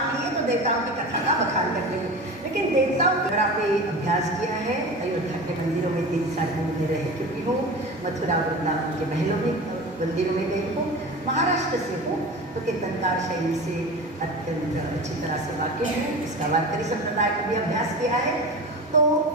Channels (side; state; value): both; normal; correlation 0.31